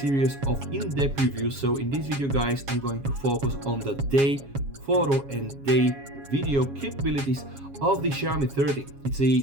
of in-depth reviews. So in this video guys, I'm going to focus on the day photo and day video capabilities of the Xiaomi 13. It's a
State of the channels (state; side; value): late; left; 7.3 ms